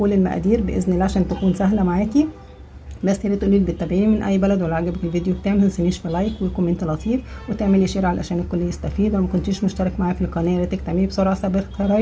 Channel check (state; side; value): identical; both; correlation 1.00